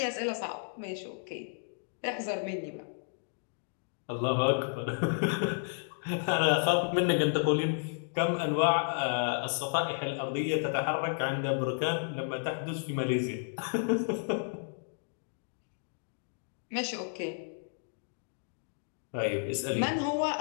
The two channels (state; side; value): silent; right; digital silence